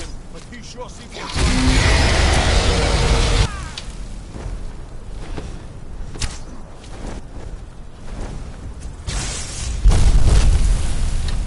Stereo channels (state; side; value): identical; both; correlation 1.00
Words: but he sure seems to